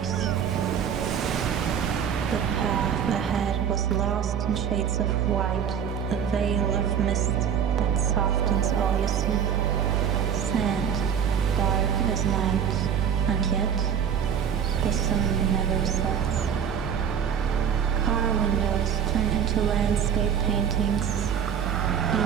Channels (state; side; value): quieter; left; 8.1 dB